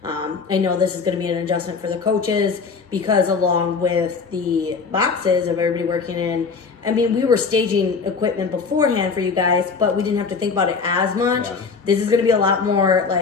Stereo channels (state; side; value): quieter; right; 5.1 dB